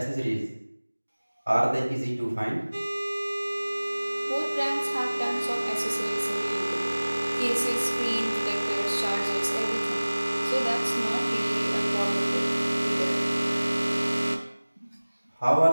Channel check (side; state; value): both; inverted; correlation -1.00